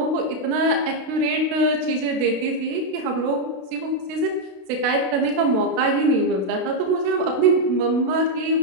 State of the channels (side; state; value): left; late; 32 ms